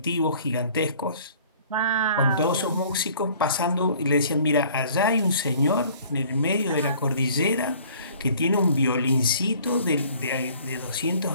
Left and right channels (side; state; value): both; inverted; correlation -0.53